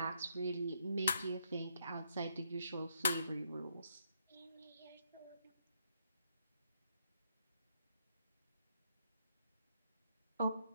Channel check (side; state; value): both; inverted; correlation -0.76